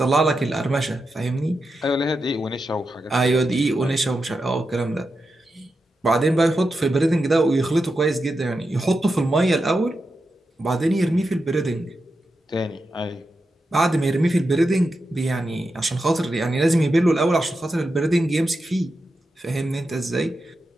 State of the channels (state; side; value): normal; both; correlation 0.89